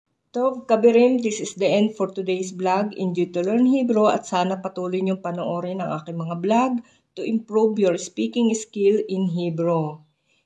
Tov Kabirim, this is the end for today's vlog. Enjoy to learn Hebrew at sana patuloy niyong panoorin ang aking mga vlog to improve your speaking skill in Hebrew.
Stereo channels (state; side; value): identical; both; correlation 1.00